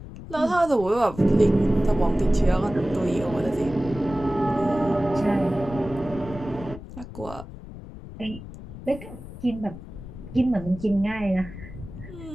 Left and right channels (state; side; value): noise; left; rumble, 13 dB below the sound